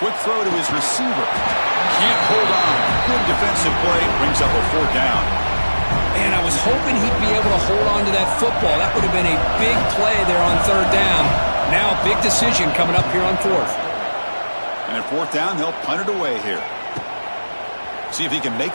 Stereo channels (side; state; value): both; inverted; correlation -1.00